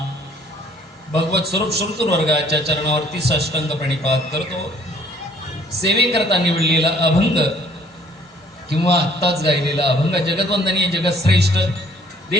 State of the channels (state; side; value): normal; both; correlation 0.59